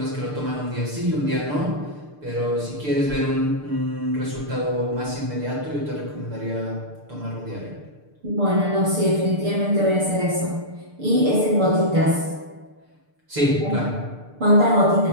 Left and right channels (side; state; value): left; late; 6.7 ms